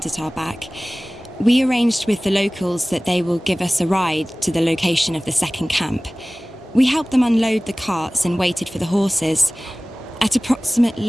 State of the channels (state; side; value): normal; both; correlation 0.98